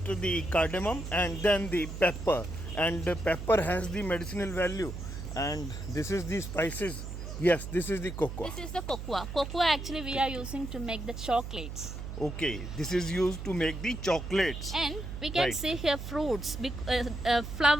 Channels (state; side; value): noise; right; hum, 8 dB below the sound